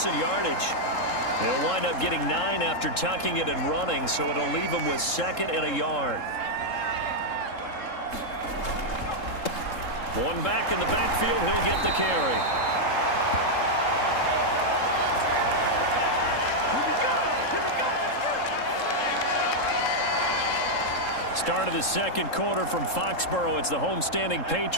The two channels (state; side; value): late; right; 3.7 ms